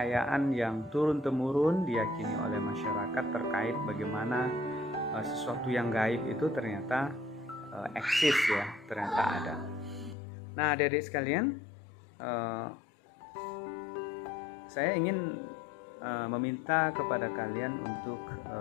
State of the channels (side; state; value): right; drops out; at 10.2 s